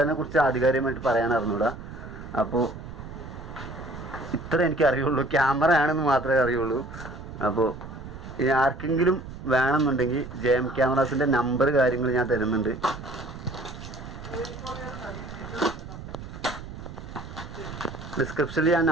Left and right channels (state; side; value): noise; right; rumble, 12 dB below the sound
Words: കുറിച്ച് ആധികാരികമായിട്ട് പറയാൻ അറിഞ്ഞൂടാ. അപ്പോൾ ഇത്ര എനിക്ക് അറിയുള്ളൂ, ക്യാമറ ആണെന്ന് മാത്രമേ അറിയുള്ളൂ. അപ്പോൾ ഇനി ആർക്കെങ്കിലും വേണമെന്നുണ്ടെങ്കിൽ JM ക്യാമറാസിൻ്റെ നമ്പർ കാര്യങ്ങൾ ഞാൻ തരുന്നുണ്ട്. ഡിസ്ക്രിപ്ഷനിൽ ഞാൻ